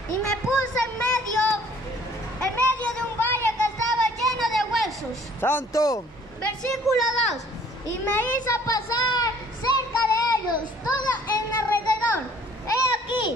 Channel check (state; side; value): normal; both; correlation 0.56